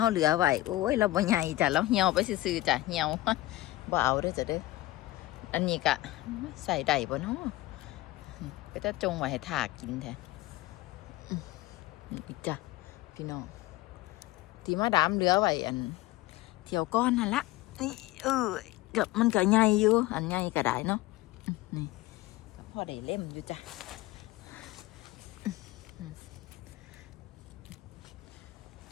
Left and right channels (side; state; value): right; quieter; 17.6 dB